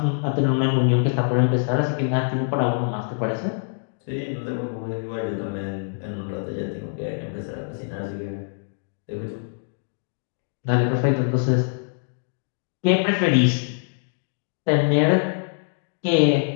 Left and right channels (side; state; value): right; silent; digital silence